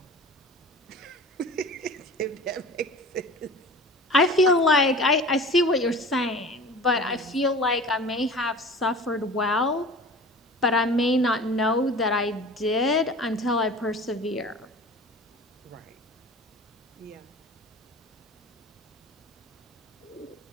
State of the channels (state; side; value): normal; both; correlation 0.39